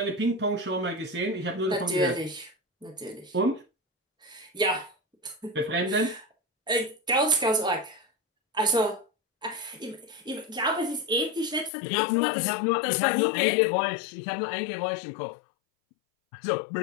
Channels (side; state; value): right; drops out; at 11.7 s